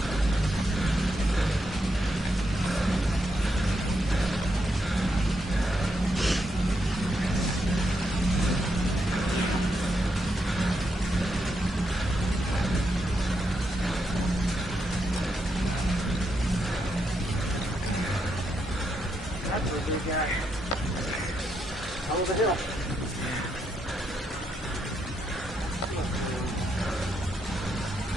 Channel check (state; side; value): normal; both; correlation 0.81